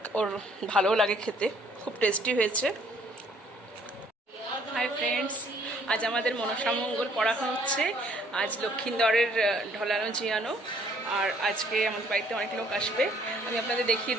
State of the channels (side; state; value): both; normal; correlation 0.62